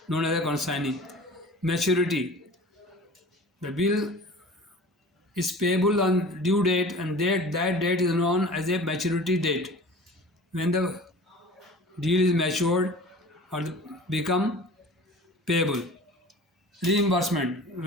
known as a consignee. Maturity. The bill is payable on due date, and that date is known as a maturity date. When the deal is matured or become payable. Reimbursement,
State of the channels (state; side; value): normal; both; correlation 0.41